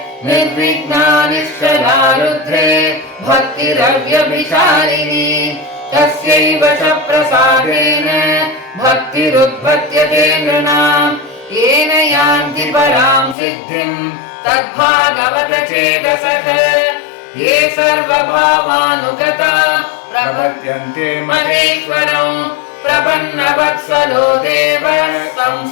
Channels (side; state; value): right; drops out; at 13.4 s